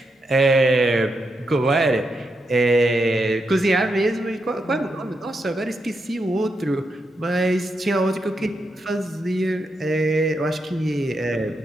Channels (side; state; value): both; normal; correlation 0.83